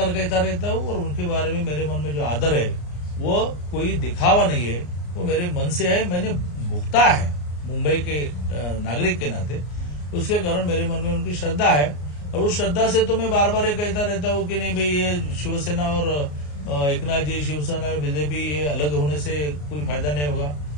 कहता रहता हूँ। और उनके बारे में मेरे मन में जो आदर है वो कोई दिखावा नहीं है, वो मेरे मन से है, मैंने भुगता है मुंबई के नागरिक के नाते, उसके कारण मेरे मन में उनकी श्रद्धा है। और उस श्रद्धा से तो मैं बार बार ये कहता रहता हूँ कि नहीं भाई, ये शिवसेना और एकनाथ जी, शिवसेना और बीजेपी, ये अलग होने से कोई फायदा नहीं होगा।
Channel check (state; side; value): late; right; 34 ms